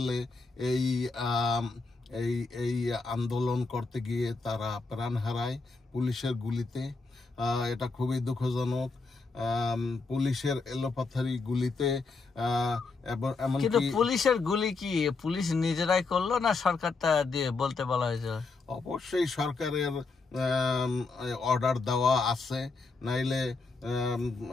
এই এই এই আন্দোলন করতে গিয়ে তারা প্রাণ হারায় পুলিশের গুলিতে। এটা খুবই দুঃখজনক। পুলিশের এলোপাথারি গুলিতে এমনকি পুলিশের গুলি কি পুলিশ নিজেরাই করলো না সরকারটা দিয়ে বলতে বলা হয়েছে? অবশ্যই সরকারের অর্ডার দেওয়া আছে, নাইলে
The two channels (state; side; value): quieter; right; 4.0 dB